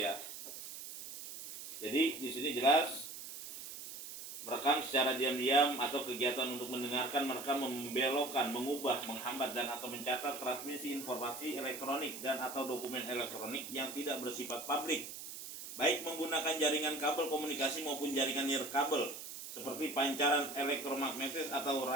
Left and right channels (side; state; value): right; noise; hiss, 10 dB below the sound